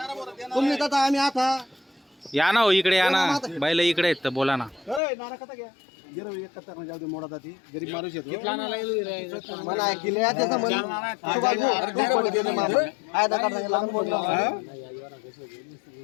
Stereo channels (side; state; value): right; drops out; at 5.0 s